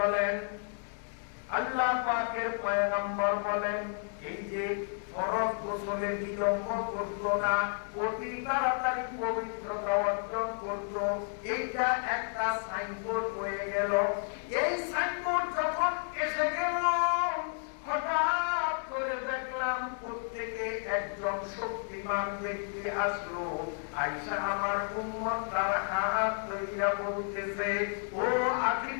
আল্লাহ পাকের পয়গম্বর বলেন, এই যে ফরজ গোসলে বিলম্ব করত না, অতি তাড়াতাড়ি পবিত্রতা অর্জন করত, এইটা একটা সাইনবোর্ড হয়ে গেল। এই সাইনবোর্ড যখন এসে গেল, হঠাৎ করে দেখলাম প্রত্যেকে একজন শক্তিমান ব্যক্তি আসলো। আয়েশা আমার উম্মত তার হাত ধইরা বলতেছে, ও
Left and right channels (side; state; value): right; silent; 55 dB below the other